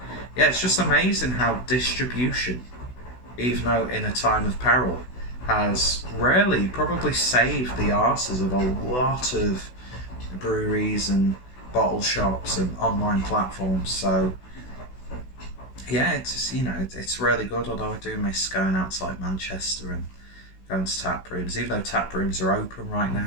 it's just amazing how distribution, even though in a time of peril, has really probably saved the arses of a lot of breweries and bottle shops and online platforms. So yeah, it's it's really good. Although I do miss going out to like Manchester and going to tap rooms. Even though tap rooms are open right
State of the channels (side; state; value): right; late; 16 ms